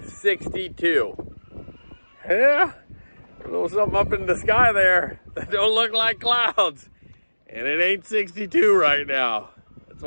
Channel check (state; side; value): inverted; both; correlation -1.00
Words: 62. Yeah, a little something up in the sky there that don't look like clouds. And it ain't 62 right now. That's